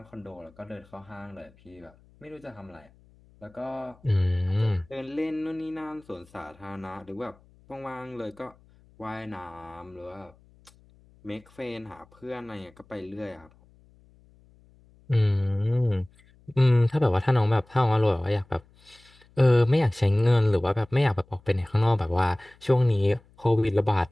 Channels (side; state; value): left; noise; hum, 29 dB below the sound